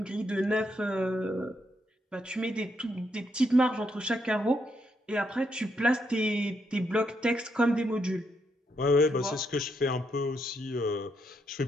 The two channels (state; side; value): normal; both; correlation 0.78